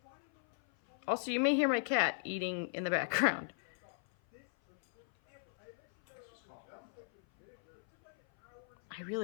Also, you may hear my cat eating in the background. I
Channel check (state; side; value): silent; right; 53 dB below the other